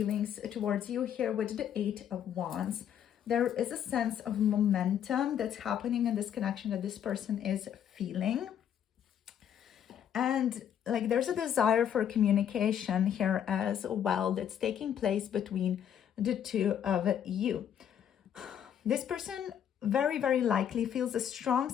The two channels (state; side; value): quieter; right; 9.3 dB